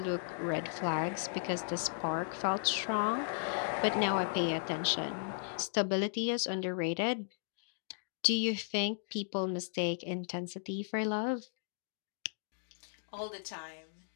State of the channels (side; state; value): right; silent; digital silence